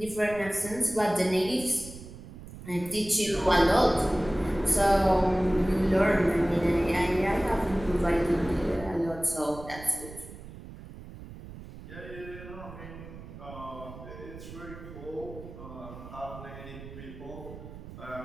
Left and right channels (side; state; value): right; noise; rumble, 14 dB below the sound